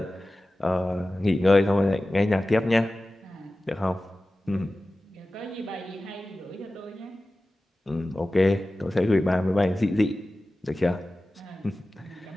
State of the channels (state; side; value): normal; both; correlation 0.96